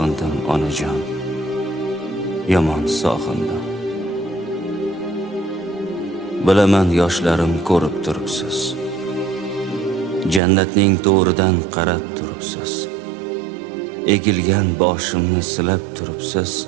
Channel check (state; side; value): drops out; left; at 10.4 s